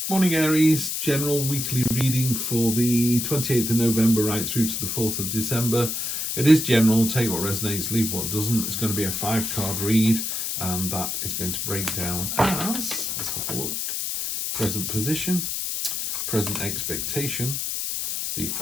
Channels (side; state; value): left; noise; hiss, 2 dB below the sound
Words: Morning Aries, general weekly reading for the 28th of November right through to the 4th of December. It is general, take what resonates, leave what doesn't. It's going to be a 5-card read, and that is going to break down as, let's have a look, present position, present expectation, the